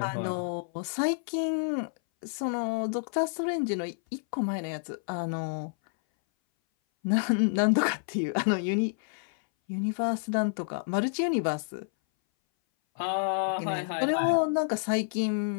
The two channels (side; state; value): right; silent; 58 dB below the other